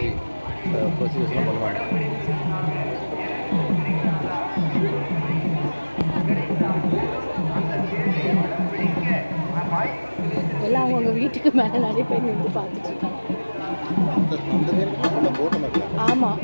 ப்ரொசீஜர்ஸ்லாம் பண்ணுவாங்க. எல்லாம் அவங்கவுங்க வீட்டுக்கு மேலே நிறைய பேர் நின்று பார்த்துட்டு இருக்காங்க. ஆமாம்,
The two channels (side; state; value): both; inverted; correlation -1.00